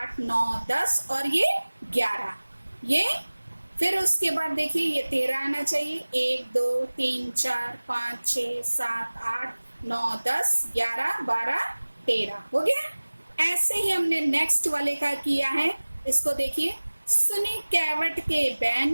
9 10 और ये 11, ये फिर उसके बाद देखिए ये 13 आना चाहिए। 1 2 3 4 5 6 7 8 9 10 11 12 13 हो गया। ऐसे ही हमने नेक्स्ट वाले का किया है। इसको देखिए, सुनी कैवट के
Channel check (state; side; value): inverted; both; correlation -1.00